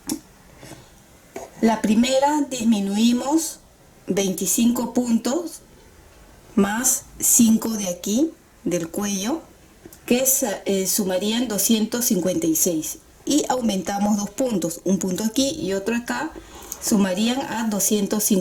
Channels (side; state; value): both; identical; correlation 1.00